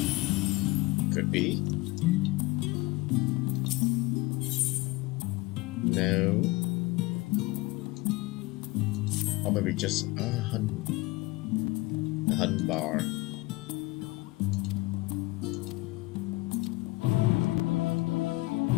could be. No. Or maybe just a hun bar.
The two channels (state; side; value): quieter; right; 21.6 dB